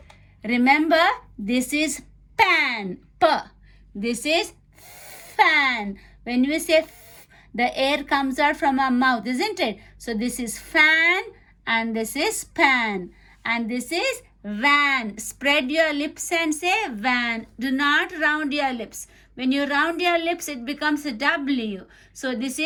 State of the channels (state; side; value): identical; both; correlation 1.00